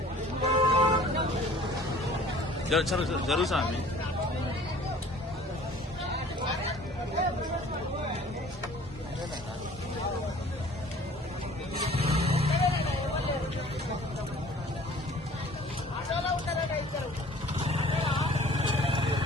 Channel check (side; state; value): both; normal; correlation 0.50